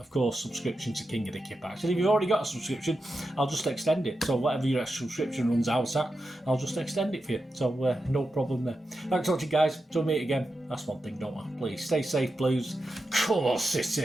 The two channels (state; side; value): normal; both; correlation 0.89